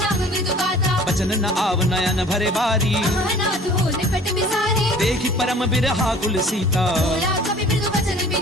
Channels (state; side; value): normal; both; correlation 0.48